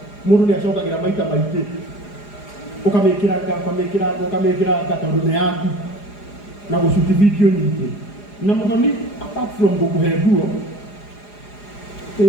mundu ni acokagira maita maingi ukamikira tondu ni yaku na gucuti video nyingi na muthoni apart from gukuhe nguo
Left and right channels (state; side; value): late; right; 4.9 ms